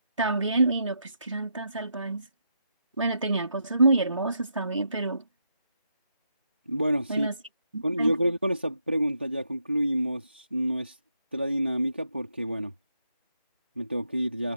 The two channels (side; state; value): both; inverted; correlation -0.80